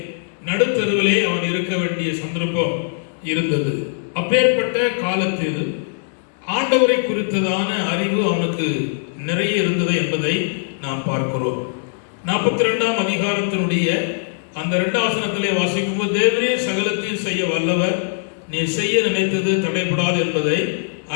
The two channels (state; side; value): silent; right; 65 dB below the other